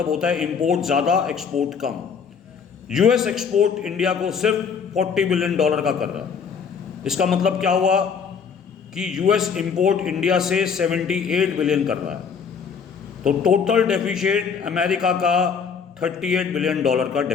होता है इंपोर्ट ज़्यादा, एक्सपोर्ट कम। US एक्सपोर्ट इंडिया को सिर्फ $40 बिलियन का कर रहा है। इसका मतलब क्या हुआ कि US इंपोर्ट इंडिया से 78 बिलियन कर रहा है। तो टोटल डेफिसिट अमेरिका का $38 बिलियन का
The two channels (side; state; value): right; quieter; 6.3 dB